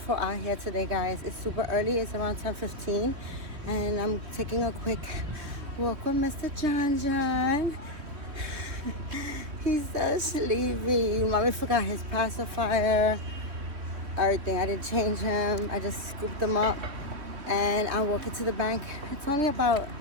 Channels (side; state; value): left; late; 3.2 ms